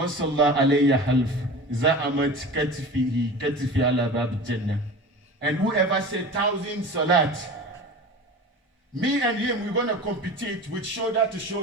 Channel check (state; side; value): normal; both; correlation 0.34